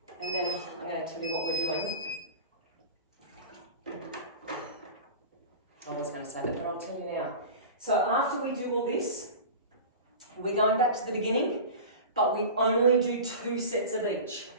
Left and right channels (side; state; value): both; inverted; correlation -0.33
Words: and then I'm going to tell you what we're doing. I was going to say that, but I'll tell you now. So after we do all this, we're going back to the beginning, but we only do 2 sets of each.